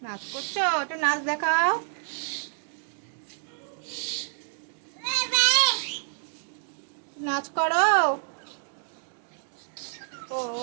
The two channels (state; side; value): silent; left; digital silence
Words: নাচ করছো? একটু নাচ দেখাও। নাচ করো। ও